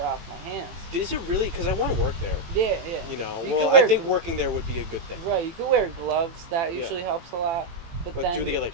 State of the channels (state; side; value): late; left; 18 ms